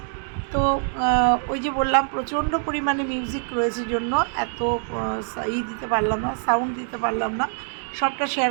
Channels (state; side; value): silent; left; digital silence